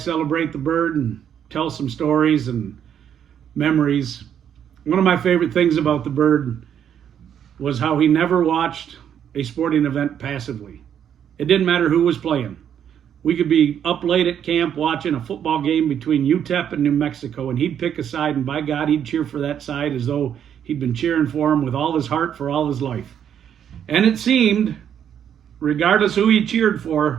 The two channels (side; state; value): left; quieter; 9.0 dB